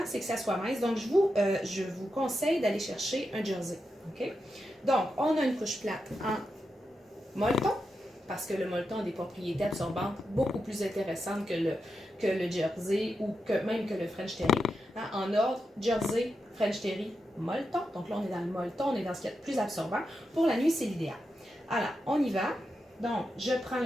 c'est que ça soit mince. Donc, je vous conseille d'aller chercher un jersey. OK? Donc, on a une couche plate en molleton, parce que le molleton a des propriétés absorbantes beaucoup plus intéressantes que le jersey ou même que le French Terry. Hein? En ordre, jersey, French Terry, molleton. Donc là, on est dans le molleton, on est dans ce qui est le plus absorbant. Pour la nuit, c'est l'idéal. Alors, on y va. Donc, je prends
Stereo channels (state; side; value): normal; both; correlation 0.87